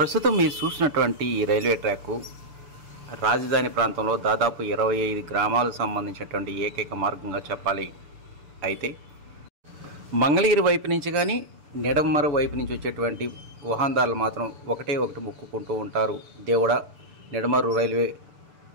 మీరు చూసినటువంటి ఈ రైల్వే ట్రాక్ రాజధాని ప్రాంతంలో దాదాపు 25 గ్రామాలకు సంబంధించినటువంటి ఏకైక మార్గంగా చెప్పాలి. అయితే మంగళగిరి వైపు నుంచి కానీ నెడమర వైపు నుంచి వచ్చేటువంటి వాహనదారులు మాత్రం ఒకటి మొక్కుకుంటూ ఉంటారు, దేవుడా నెడమరు రైల్వే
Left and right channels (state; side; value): late; left; 6.9 ms